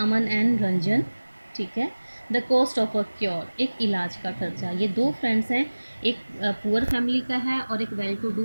and Ranjan. ठीक है, the cost of a cure, एक इलाज का खर्चा। ये दो फ्रेंड्स हैं, एक पुअर फैमिली का है और एक वेल टू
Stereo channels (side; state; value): both; inverted; correlation -1.00